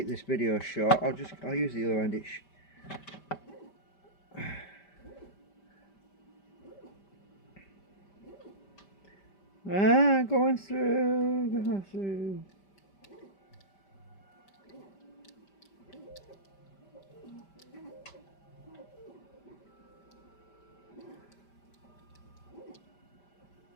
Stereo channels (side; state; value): right; late; 5.1 ms